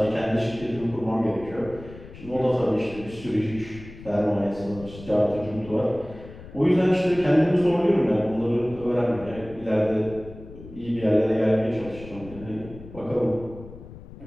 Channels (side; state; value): left; noise; rumble, 16 dB below the sound